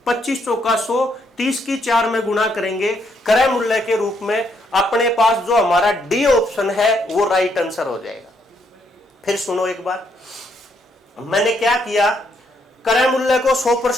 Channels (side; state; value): both; normal; correlation 0.74